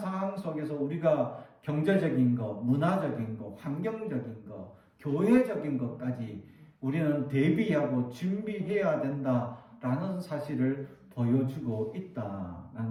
속에서 우리가 경제적인 것, 문화적인 것, 환경적인 것, 교회적인 것까지 우리는 대비하고 준비해야 된다라는 사실을 보여주고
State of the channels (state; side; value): identical; both; correlation 1.00